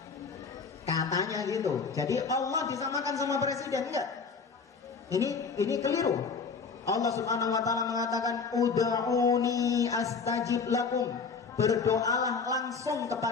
katanya gitu. Jadi Allah disamakan sama presiden? Enggak. Ini keliru. Allah Subhanahu wa ta'ala mengatakan ud'uni astajib lakum, berdoalah langsung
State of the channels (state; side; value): quieter; right; 5.2 dB